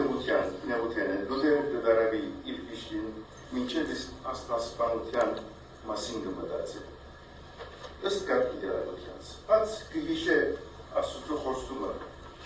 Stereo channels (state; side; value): identical; both; correlation 1.00